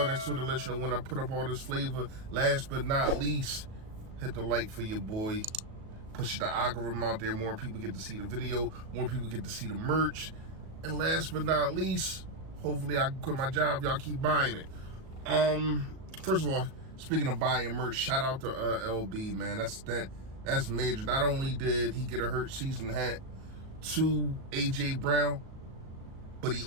next to it to let you know when I put up all this flavor. Last but not least, hit the like for your boy. Push the algorithm out there. More people get to see the video. More people get to see the merch. And last but not least, hopefully I can quit my job. Y'all keep buying it. First of all, speaking of buying merch, shout out to LB, man. That's major. Not only did he get a Hurt season hat to AJ Brown, but he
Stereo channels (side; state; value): left; late; 37 ms